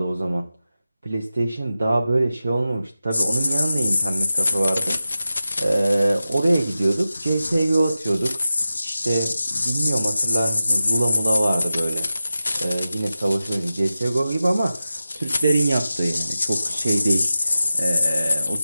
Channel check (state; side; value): inverted; both; correlation -0.93